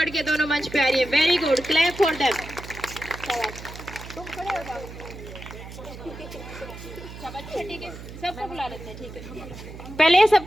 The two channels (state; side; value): noise; right; hum, 13 dB below the sound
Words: के दोनों मंच पे आ रही है। Very good, clap for them. तुम खड़े हो जाओ। ठीक है, सबको बुला लेते हैं। ठीक है, पहले